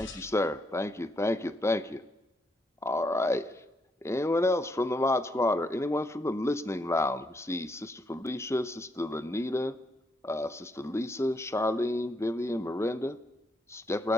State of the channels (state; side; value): normal; both; correlation 0.76